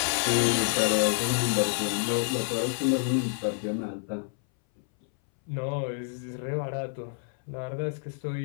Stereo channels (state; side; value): silent; right; 59 dB below the other